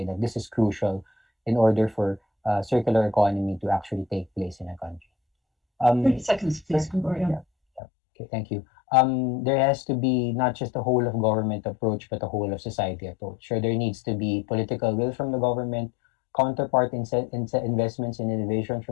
that this is crucial in order for circular economy to actually take place in a country. 30 seconds, please, Gregorio. Yeah. Okay, thank you. There has to be not just a whole of government approach, but a whole of society approach. So there needs to be political will from the government, counterpart investments in innovation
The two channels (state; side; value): drops out; right; at 7.8 s